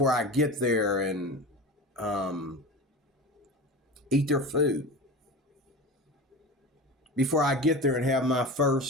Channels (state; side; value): normal; both; correlation 0.31